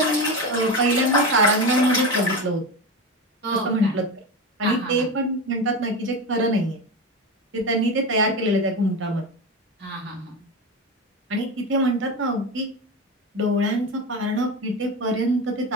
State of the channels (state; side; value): normal; both; correlation 0.21